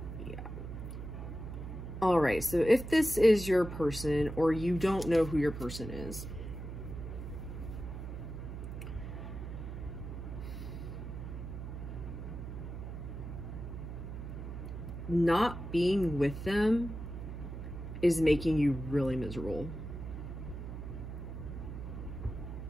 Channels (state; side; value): noise; right; hum, 8 dB below the sound